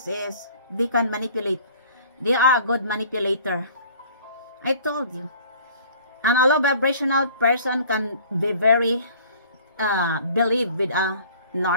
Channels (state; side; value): inverted; both; correlation -0.50